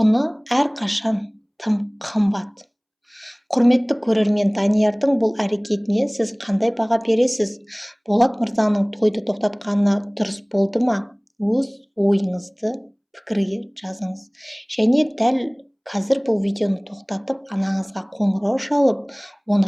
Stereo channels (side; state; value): both; identical; correlation 1.00